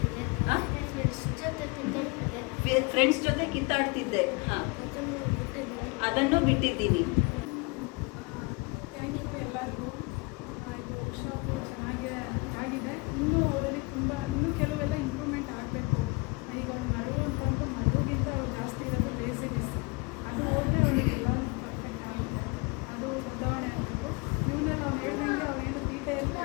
ಫ್ರೆಂಡ್ಸ್ ಜೊತೆ ಕಿತ್ತಾಡ್ತಿದ್ದೆ. ಹಾಂ, ಅದನ್ನು ಬಿಟ್ಟಿದ್ದೀನಿ. ಥ್ಯಾಂಕ್ ಯು ಎಲ್ಲರಿಗೂ. ಇದು ವರ್ಕ್ಶಾಪು ಚೆನ್ನಾಗಿ ಆಗಿದೆ. ಇನ್ನೂ ಅವರಲ್ಲಿ ಇನ್ನೂ ಕೆಲವೆಲ್ಲ ಇಂಪ್ರೂವ್ಮೆಂಟ್ ಆಗಬೇಕು. ಈಗ ಅವ್ರು ಮರವು ಅಂತಂದು ಮರಗಿಂತ ಅವ್ರು ಜಾಸ್ತಿ ಇರೋದು ಲೇಸಿನೆಸ್. ಅದು ಹೋದರೆ ಅವರಿಗೆಲ್ಲ ಪರ್ಫೆಕ್ಟ್ ಆಗುತ್ತೆ. ಅದು ಬದಲಾವಣೆ ಆಗಬೇಕು. ಇವನ್ನೆಲ್ಲ ಅವ್ನು ಹೇಳ್ದಂಗೆ ಅವನೇನು ತೀಟೆಯಲ್ಲಿ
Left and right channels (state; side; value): quieter; right; 28.5 dB